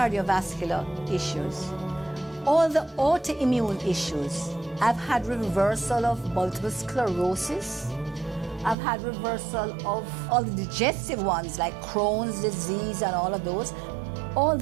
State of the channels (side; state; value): left; drops out; at 8.8 s